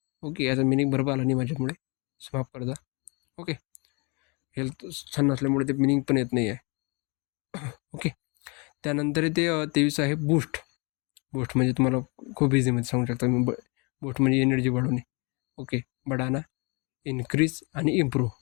ओके, याचा मिनिंग बरोबर आला नाही माझ्यामुळे, माफ करता. ओके. हेल्थ छान नसल्यामुळे ते मिनिंग पण येत नाही आहे. ओके. त्यानंतर ते 23 आहे बूस्ट. बूस्ट म्हणजे तुम्हाला खूप इझीमध्ये सांगू शकता मी. बूस्ट म्हणजे एनर्जी वाढवणे. ओके. बढाना, इन्क्रीज आणि इम्प्रूव्ह.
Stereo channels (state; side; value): quieter; right; 30.5 dB